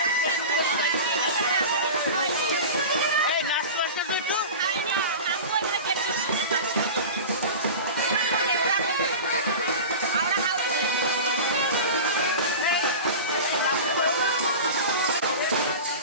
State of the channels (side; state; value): both; inverted; correlation -0.30